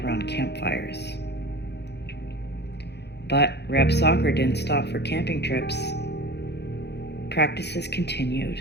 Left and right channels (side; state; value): right; late; 0.49 ms